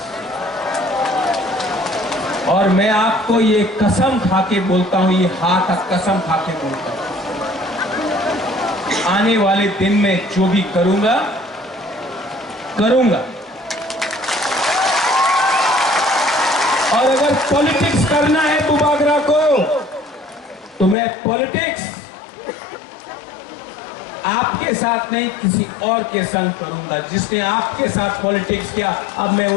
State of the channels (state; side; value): drops out; right; at 21.0 s